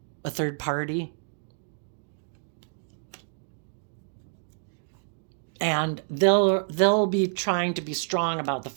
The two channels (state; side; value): silent; left; 59 dB below the other